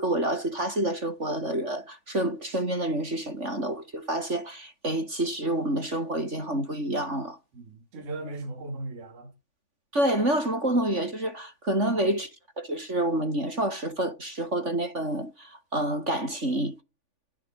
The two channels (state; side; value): late; left; 3.5 ms